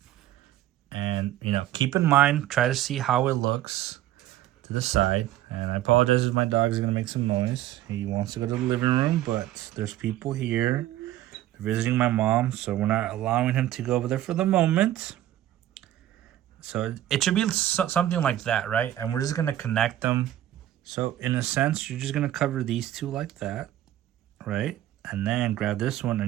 and you know, keep in mind, try to see how it looks to the side. And I apologize if my dog is gonna make some noise. He wants to go to the living room, but there's people here visiting my mom, so we're not allowing him to go over there for the moment. So it should be something like that, right? And we're just gonna connect them. So in a sense, you're just gonna cover these 2 like that, right? And then grab this one, and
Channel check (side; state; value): left; quieter; 13.5 dB